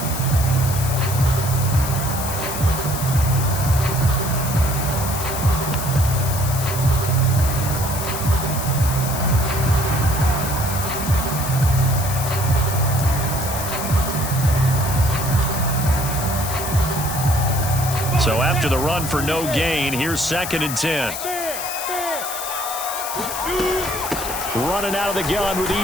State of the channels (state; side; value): noise; left; hiss, 6 dB below the sound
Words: So after the run for no gain, here's second and 10. Running out of the gun with